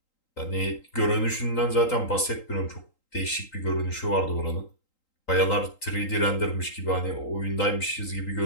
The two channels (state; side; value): late; right; 3.8 ms